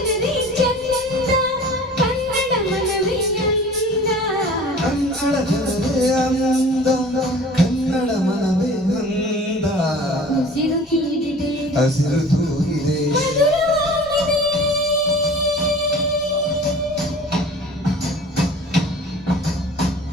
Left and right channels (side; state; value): both; normal; correlation 0.44